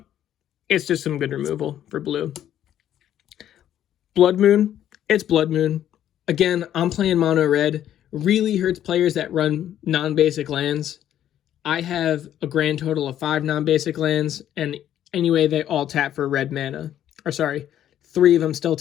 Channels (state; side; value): quieter; right; 11.1 dB